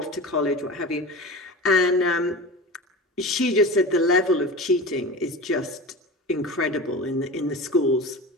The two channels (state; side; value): normal; both; correlation 0.31